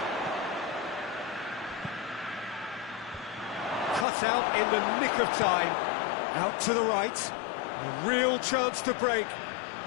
Cut out in the nick of time. Out to the right. A real chance to break.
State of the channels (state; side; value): drops out; right; at 4.0 s